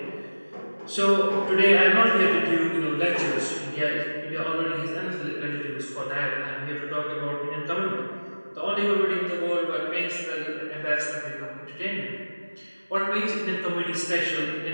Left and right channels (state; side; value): inverted; both; correlation -1.00